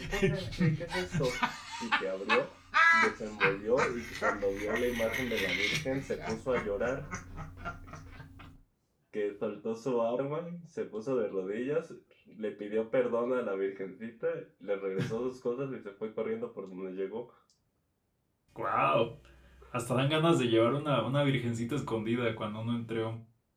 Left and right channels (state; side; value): identical; both; correlation 1.00